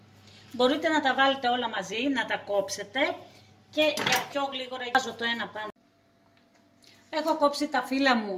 Μπορείτε να τα βάλετε όλα μαζί, να τα κόψετε και για πιο γλίγορα βάζω το ένα πάνω. Έχω κόψει τα φύλλα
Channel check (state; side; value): identical; both; correlation 1.00